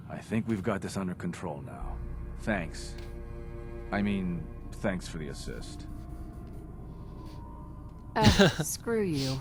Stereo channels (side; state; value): both; identical; correlation 1.00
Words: I think we've got this under control now. Thanks. I mean, thanks for the assist. Screw you.